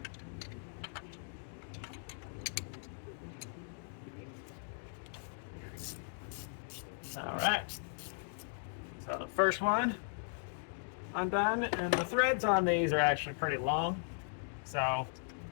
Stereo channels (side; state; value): right; silent; digital silence